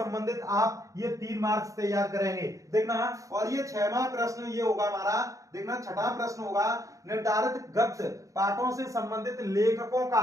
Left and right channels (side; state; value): left; late; 0.16 ms